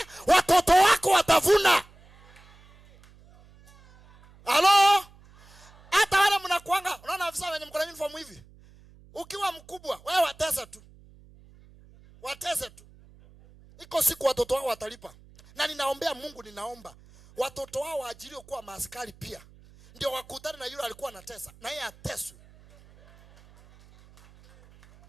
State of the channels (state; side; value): noise; right; hum, 25 dB below the sound